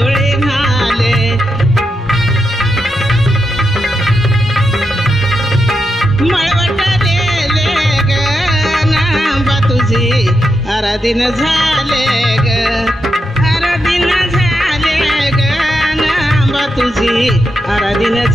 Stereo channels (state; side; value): normal; both; correlation 0.85